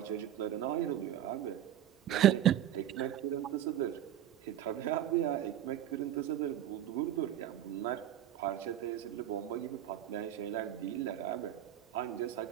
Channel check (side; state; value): left; quieter; 11.5 dB